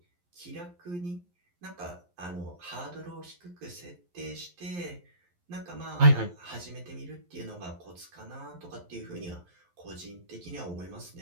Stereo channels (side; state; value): left; late; 11 ms